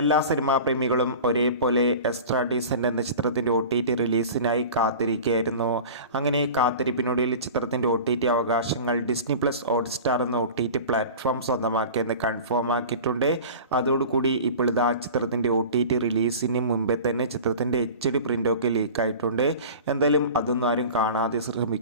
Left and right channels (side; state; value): both; inverted; correlation -0.36